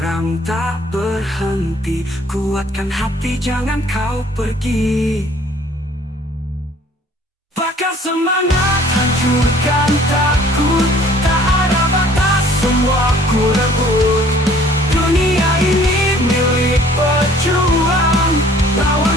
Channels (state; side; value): normal; both; correlation 0.55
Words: tak berhenti. Kuatkan hati, jangan kau pergi. Bakar semangat, hancurkan takut. Tak ada batas, semua ku rebut. Dunia ini milik pejuang, lawan